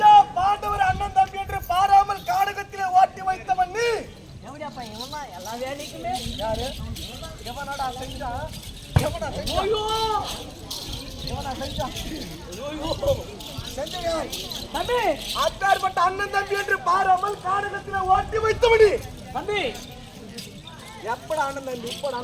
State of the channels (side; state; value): both; identical; correlation 1.00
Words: பாண்டவர் அண்ணன் தம்பி என்று பாராமல் காடகத்திலே ஓட்டி வைத்தவன் நீ கேவடியா பையன் இவன் எல்லா வேலைக்குமே யாரு? எவனடா செஞ்சா? எவனா செஞ்சா? எவனா செஞ்சா? செஞ்சவன் தம்பி அத்தார்பட்ட அண்ணன் தம்பி என்று பாராமல் காடகத்திலே ஓட்டி வைத்தவன் நீ தம்பி எப்படா அண்ணன் தம்பி? இப்படா